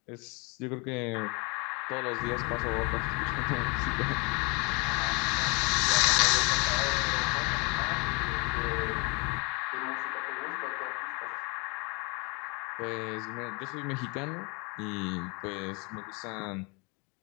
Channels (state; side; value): quieter; right; 30.1 dB